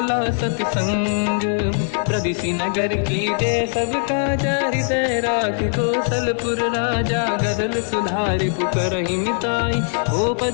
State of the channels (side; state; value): right; silent; 65 dB below the other